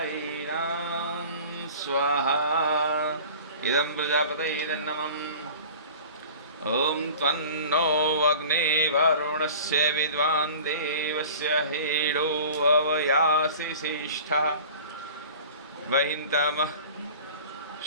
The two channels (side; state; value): both; inverted; correlation -0.42